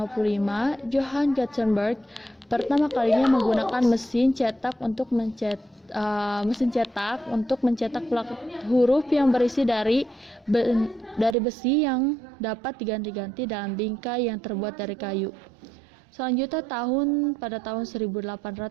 Johann Gutenberg pertama kalinya menggunakan mesin cetak untuk mencetak huruf yang berisi dari besi yang dapat diganti-ganti dalam bingkai yang terbuat dari kayu. Selanjutnya pada tahun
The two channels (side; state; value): left; drops out; at 11.4 s